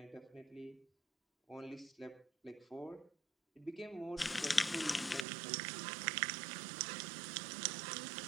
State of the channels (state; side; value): drops out; left; at 5.2 s